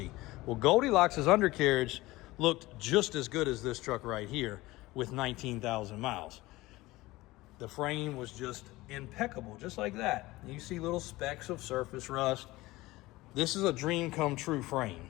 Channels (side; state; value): right; quieter; 19.3 dB